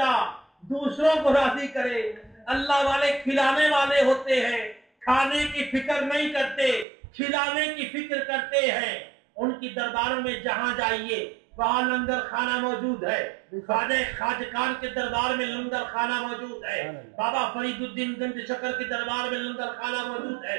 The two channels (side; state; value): left; drops out; at 6.9 s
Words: دوسروں کو راضی کرے. اللہ والے کھلانے والے ہوتے ہیں, کھانے کی فکر نہیں کرتے, کھلانے کی فکر کرتے ہیں. ان کی درباروں میں جہاں جائیے وہاں لنگر خانہ موجود ہے. خواجہ کے دربار میں لنگر خانہ موجود ہے. بابا فرید الدین گنج شکر کے دربار میں لنگر خانہ موجود